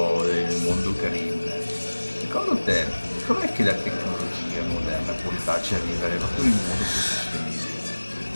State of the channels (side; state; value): both; inverted; correlation -1.00